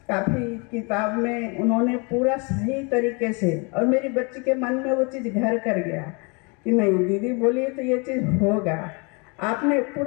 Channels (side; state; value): right; quieter; 31.8 dB